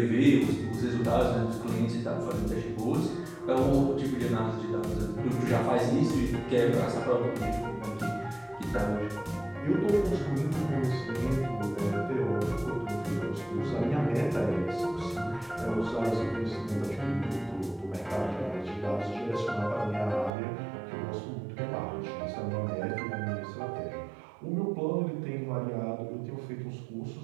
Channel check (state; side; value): drops out; left; at 20.3 s